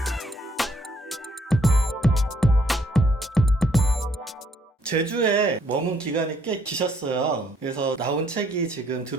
제주에 머문 기간이 꽤 기셨어요. 그래서 나온 책이 지금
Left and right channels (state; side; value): normal; both; correlation 0.68